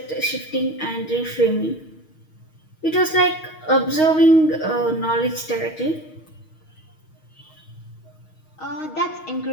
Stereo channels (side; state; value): right; late; 6.4 ms